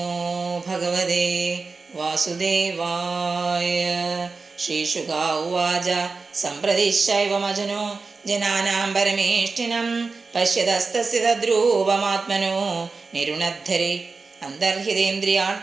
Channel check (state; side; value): quieter; left; 4.2 dB